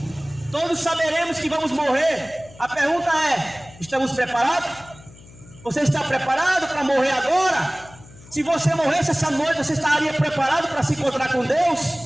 todos saberemos que vamos morrer. A pergunta é: estamos preparados? Você está preparado para morrer agora? Se você morresse essa noite, você estaria preparado para se encontrar com Deus?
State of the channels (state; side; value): noise; left; hum, 22 dB below the sound